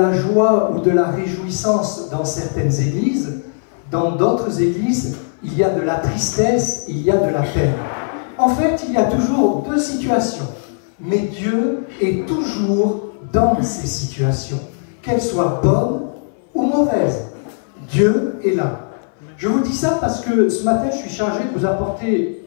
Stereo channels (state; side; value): silent; right; 60 dB below the other